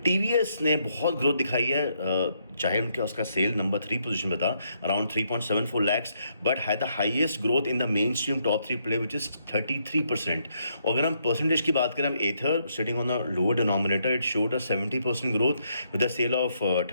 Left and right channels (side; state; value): both; inverted; correlation -0.75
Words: TVS ने बहुत ग्रोथ दिखाई है, चाहे उनका उसका सेल नंबर 3 पोजीशन पे था around 3.74 lakhs, but had the highest growth in the mainstream top 3 play which is 33%। और अगर हम परसेंटेज की बात करें, हम Ather sitting on the lower denominator, it showed a 70% growth with the sale of